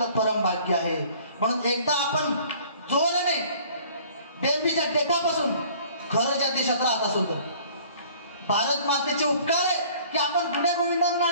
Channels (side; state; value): both; inverted; correlation -0.52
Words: परम भाग्य आहे. म्हणून एकदा आपण जोराने बेंबीच्या टेकापासून खरं ज्या देशात राहत असो तर भारत मातेचे उपकार आहे की आपण गुण्या गोविंदांना